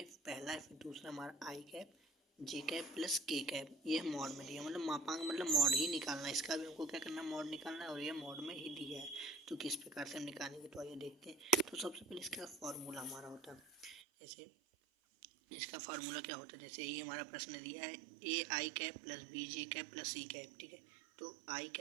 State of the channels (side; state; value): left; drops out; at 14.0 s